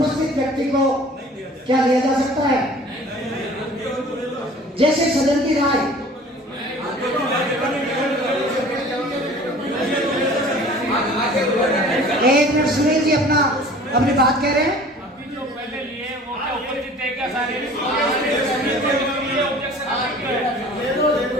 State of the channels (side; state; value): both; normal; correlation 0.46